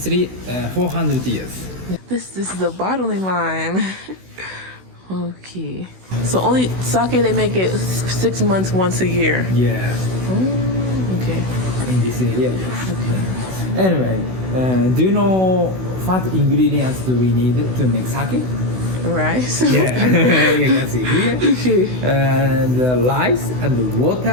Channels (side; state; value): left; late; 16 ms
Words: 400 years. This is a bottling line. Okay. So only sake they make it 6 months once a year. Yeah. Okay. In this area. Okay. Anyway, do you know what ingredients do we need to make sake? Rice. Yeah, you can see here. Okay. And rice and